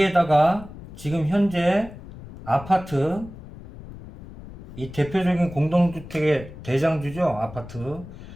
지금 현재 아파트, 이 대표적인 공동주택의 대장주죠.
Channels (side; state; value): left; noise; rumble, 15 dB below the sound